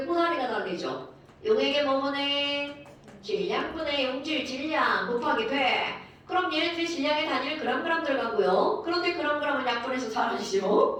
꼬다리가 달리죠. 용액의 뭐분의 질량분의 용질 질량 곱하기 100. 그럼 얘네들이 질량의 단위를 그램 들어가고요. 그런데 그램은 약분해서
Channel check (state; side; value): identical; both; correlation 1.00